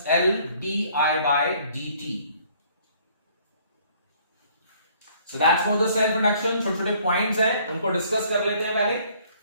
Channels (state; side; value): inverted; both; correlation -0.60